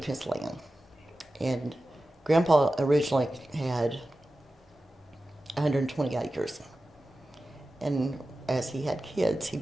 his land. And Grandpa originally had 120 acres. And as he had kids,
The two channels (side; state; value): both; normal; correlation 0.94